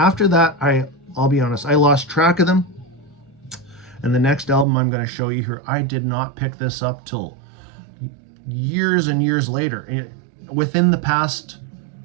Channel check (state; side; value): drops out; left; at 4.7 s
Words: that, I'll be honest, I lost track of them. And the next album I'm going to show you here, I did not pick this up till years and years later. Within the past